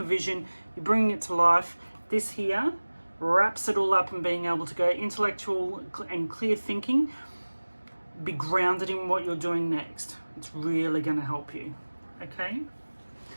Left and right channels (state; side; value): inverted; both; correlation -1.00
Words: vision, you're bringing it to life, this here wraps it all up and being able to go intellectual and clear thinking, be grounded in what you're doing next. It's really going to help you, okay?